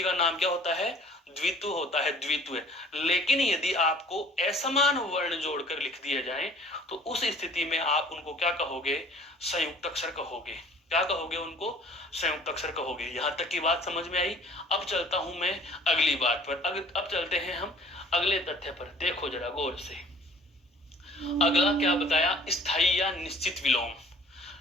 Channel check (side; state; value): both; normal; correlation 0.51